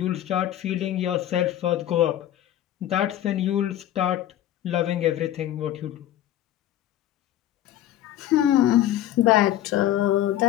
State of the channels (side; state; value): right; quieter; 12.5 dB